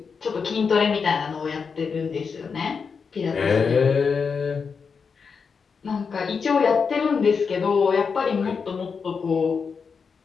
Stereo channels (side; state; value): right; quieter; 5.6 dB